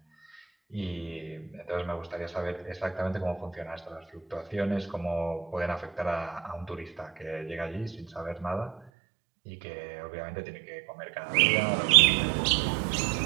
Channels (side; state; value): left; drops out; at 8.8 s